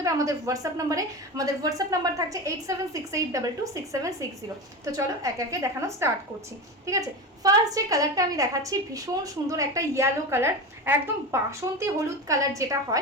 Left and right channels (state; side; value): normal; both; correlation 0.24